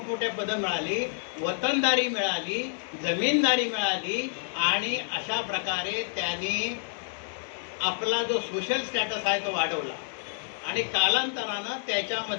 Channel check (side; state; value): right; silent; 59 dB below the other